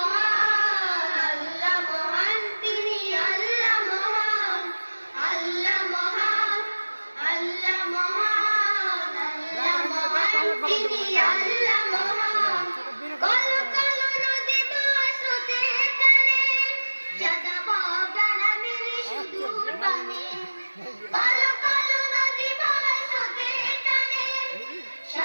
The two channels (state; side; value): inverted; both; correlation -1.00